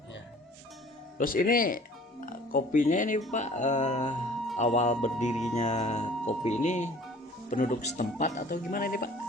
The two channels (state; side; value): normal; both; correlation 0.50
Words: iya. Terus ini kopinya ini, Pak, awal berdirinya kopi ini penduduk setempat atau gimana ini, Pak?